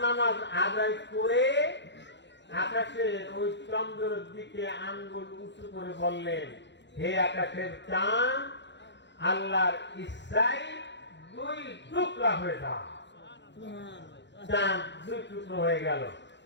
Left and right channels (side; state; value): right; late; 0.52 ms